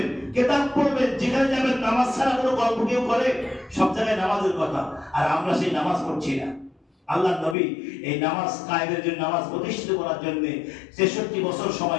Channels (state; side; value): drops out; right; at 7.6 s